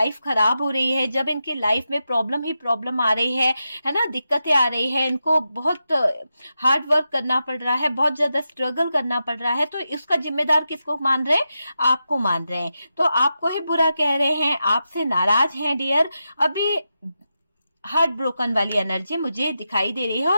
खराब हो रही है, जब इनकी लाइफ में प्रॉब्लम ही प्रॉब्लम आ रही है ना, दिक्कतें आ रही है, इनको बहुत हार्ड वर्क करना पड़ रहा है, बहुत ज्यादा स्ट्रगल करना पड़ रहा है, तो इसका जिम्मेदार किसको मान रहे हैं? आपको मान रहे हैं। तो आपको ही बुरा कह रहे हैं, आपसे नाराज हैं डियर। अभी हार्ट ब्रोकन वाली एनर्जी मुझे दिखाई दे रही है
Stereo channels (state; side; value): inverted; both; correlation -0.88